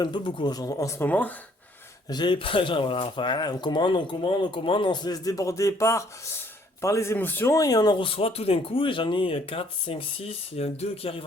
peu beaucoup en ce moment. J'ai pas, genre, voilà, enfin, on se laisse déborder par les émotions et on en reçoit tout d'un coup. Et j'en ai 4, 5, 6, il y en a 2 qui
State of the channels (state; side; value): normal; both; correlation 0.63